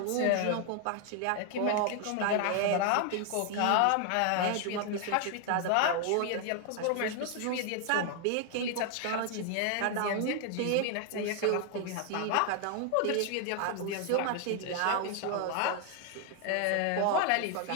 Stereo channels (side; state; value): both; different; correlation 0.00